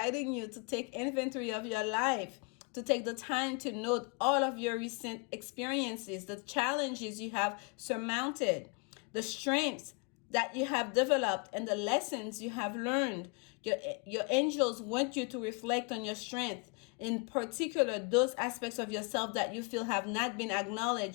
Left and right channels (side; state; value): right; quieter; 32.6 dB